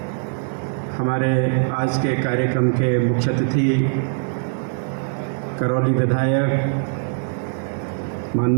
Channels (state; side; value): silent; left; 64 dB below the other